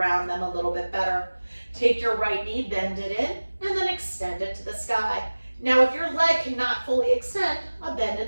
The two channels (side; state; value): both; inverted; correlation -1.00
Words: them a little bit better. Take your right knee, bend it in, and then extend it to the sky. Now, if your leg cannot fully extend, a bend in